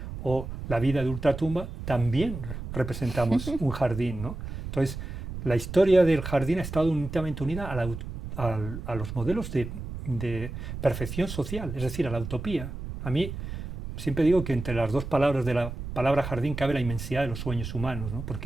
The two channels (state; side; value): noise; right; rumble, 8 dB below the sound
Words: o la vida de ultratumba, también representamos un jardín, ¿no? Entonces, la historia del jardín ha estado íntimamente unida a los modelos de perfección social, es decir, a la utopía. A mí siempre digo que entre las dos palabras de la palabra jardín cabe la inmensidad de los sueños humanos, ¿no?